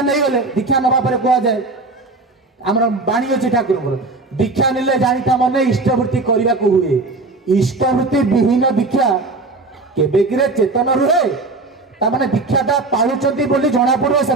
दीक्षा नवा कह जाए आम बाणी अच्छी ठाकुर दीक्षा निले जानी मैंने इष्टवृत्ति करने को हुए इष्टवृत्ति विहीन दीक्षा केबेकिरे चेतन रुहे तामाने दीक्षाटा पालुचंती बोली जना पड़ो से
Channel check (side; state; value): left; quieter; 3.3 dB